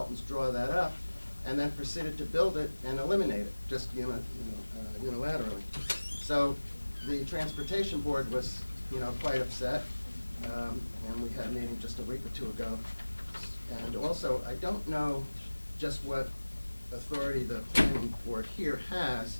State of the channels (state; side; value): inverted; both; correlation -1.00